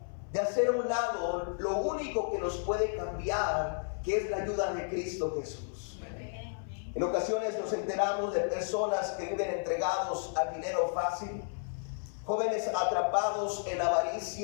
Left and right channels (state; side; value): silent; right; 56 dB below the other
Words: de hacer a un lado lo único que nos puede cambiar, que es la ayuda de Cristo Jesús. En ocasiones nos enteramos de personas que viven entregados al dinero fácil. Jóvenes atrapados en